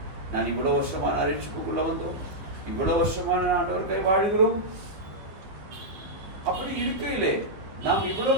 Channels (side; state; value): left; late; 15 ms